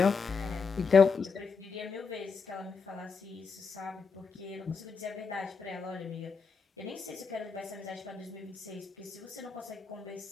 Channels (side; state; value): right; quieter; 5.3 dB